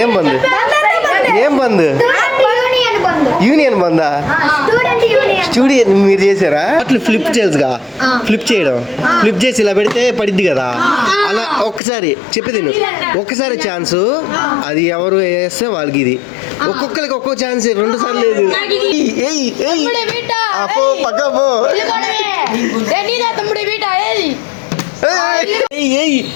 యూనియన్ బందా? స్టూడియో మీరు చేశారా? అట్లా ఫ్లిప్ చేయగా ఫ్లిప్ చేయడం ఫ్లిప్ చేసి ఇలా పెడితే పడిద్ది కదా, అలా ఒక్కసారి చెప్పేది ఒక్కసారి ఛాన్స్, అది ఎవరు వేస్తే వాళ్ళకి ఇది. ఒక్కొక్కరికి ఒక్కొక్క ఛాన్స్, 2 సార్లు లేదు. పక్క పో.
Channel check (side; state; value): right; drops out; at 11.8 s